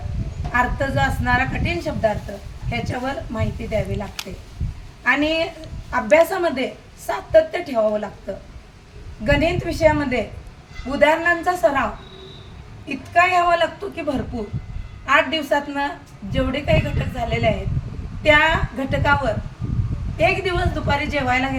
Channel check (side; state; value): both; identical; correlation 1.00